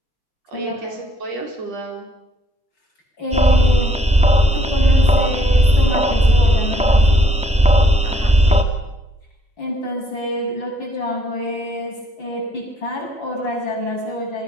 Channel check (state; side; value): normal; both; correlation 0.68